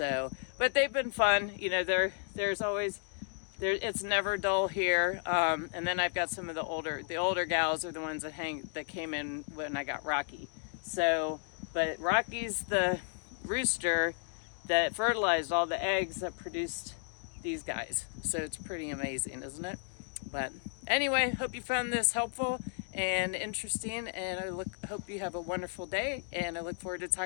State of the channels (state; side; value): silent; right; 55 dB below the other